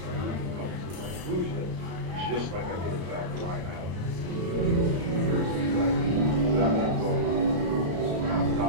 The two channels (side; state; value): left; late; 34 ms